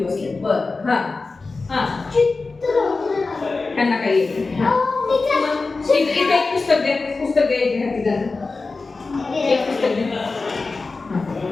बसले. बरं. त्यांना काही येत इथे एक पुस्तक द्या. पुस्तक द्यायचे हाती त्यांना. एक पुस्तक द्या.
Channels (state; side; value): quieter; right; 3.9 dB